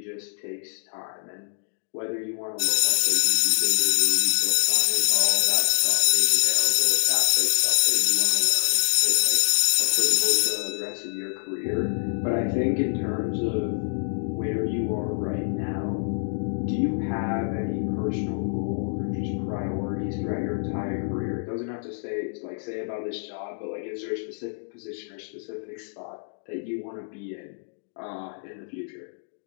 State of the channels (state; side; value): silent; right; digital silence